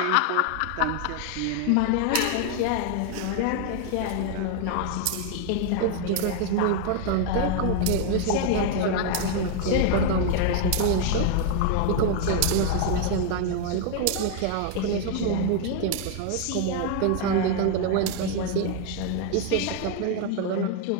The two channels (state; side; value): different; both; correlation 0.00